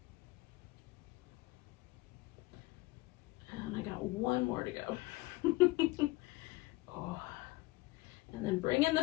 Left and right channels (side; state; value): right; quieter; 20.8 dB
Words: And I got 1 more to go. And then bring in the